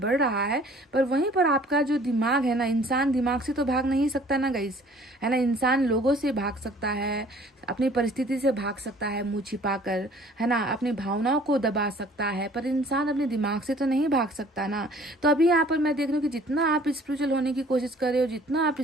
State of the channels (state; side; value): normal; both; correlation 0.53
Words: रहा है, पर वहीं पर आपका जो दिमाग है ना, इंसान दिमाग से तो भाग नहीं सकता ना गाइस, है ना। इंसान लोगों से भाग सकता है, अपनी परिस्थिति से भाग सकता है मुंह छिपाकर, है ना, अपनी भावनाओं को दबा सकता है, पर इंसान अपने दिमाग से तो नहीं भाग सकता ना। तो अभी यहाँ पर मैं देख रही हूँ कि जितना आप स्पिरिचुअल होने की कोशिश कर रहे हो, जितना आप